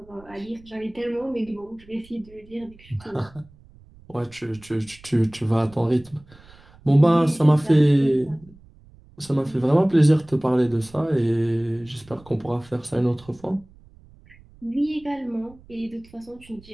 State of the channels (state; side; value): noise; right; rumble, 25 dB below the sound